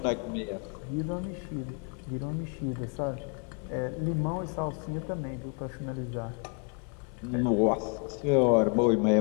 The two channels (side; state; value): right; quieter; 37.1 dB